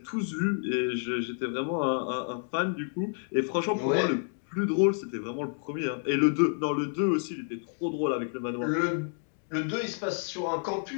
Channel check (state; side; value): silent; right; 56 dB below the other